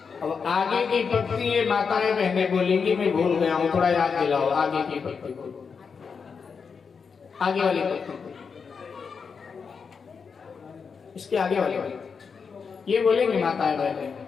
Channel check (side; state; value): right; quieter; 5.7 dB